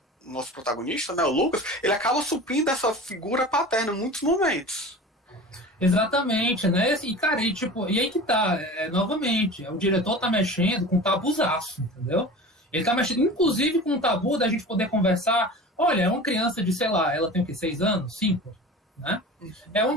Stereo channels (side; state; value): both; normal; correlation 0.36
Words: nosso protagonista, né, o Lucas, ele acaba suprindo essa figura paterna em muitos momentos. Exatamente, né? E, cara, e aí que tá, novamente, o diretor tá mexendo com um tabuzaço, entendeu? Ele tá mexendo, inclusive, com um tabu da gente poder conversar. Olha, é uma criança de, sei lá, ela tem o quê? 6 anos? 5? Né? É